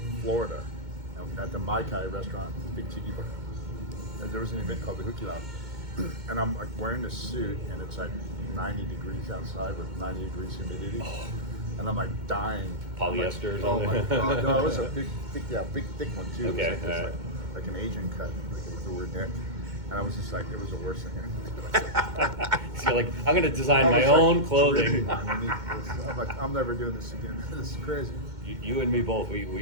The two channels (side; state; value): left; late; 2.2 ms